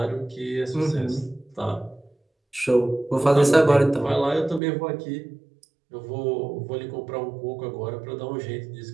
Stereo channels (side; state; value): left; drops out; at 4.6 s